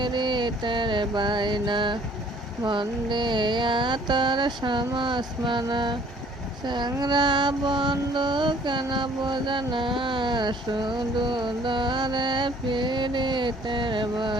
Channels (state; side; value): normal; both; correlation 0.57